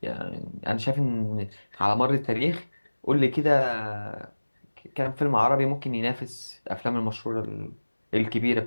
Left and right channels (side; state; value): both; inverted; correlation -1.00